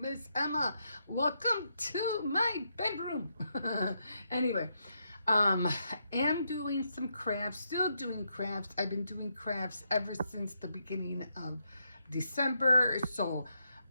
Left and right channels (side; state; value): both; inverted; correlation -0.81